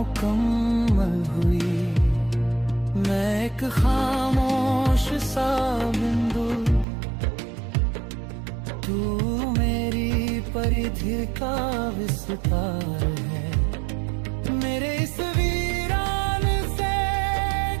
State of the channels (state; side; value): drops out; left; at 6.9 s